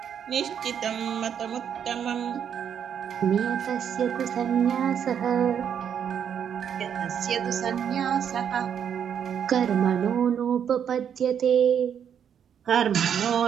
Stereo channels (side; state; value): left; quieter; 8.4 dB